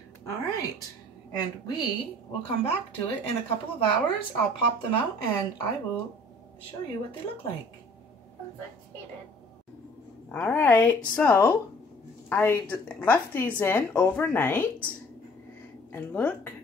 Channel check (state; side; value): normal; both; correlation 0.53